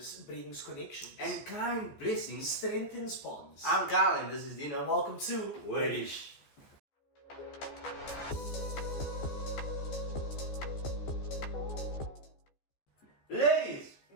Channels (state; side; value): late; right; 14 ms